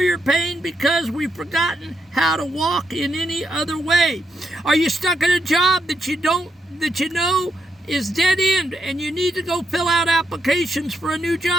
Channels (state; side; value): normal; both; correlation 0.80